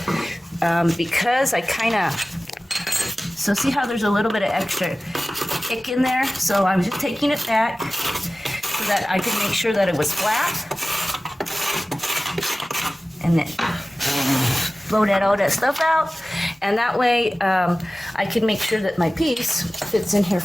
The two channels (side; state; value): both; normal; correlation 0.97